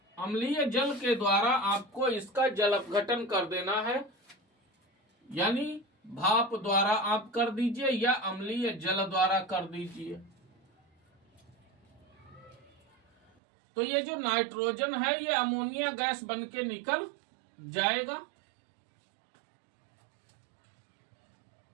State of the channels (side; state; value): left; drops out; at 13.3 s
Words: अम्लीय जल के द्वारा आपको इसका जल अपघटन कर देना है, यानी भाप द्वारा आप कर दीजिए या अम्लीय जल द्वारा कर दीजिए। तो ये जो नाइट्रोजन है, ये अमोनिया गैस बन के निकल जाएगा।